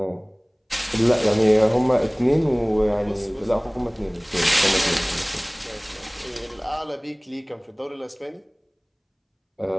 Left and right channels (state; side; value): identical; both; correlation 1.00